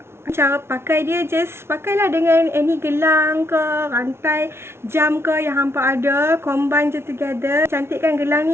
Cara pakai dia, just pakailah dengan any gelang ke, rantai, jam ke yang hampa ada. Combine je together. Cantik kan gelang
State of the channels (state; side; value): late; left; 0.12 ms